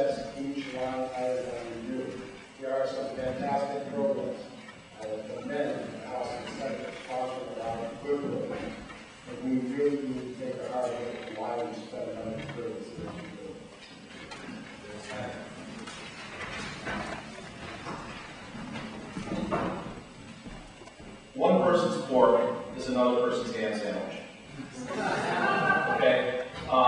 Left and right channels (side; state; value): both; identical; correlation 1.00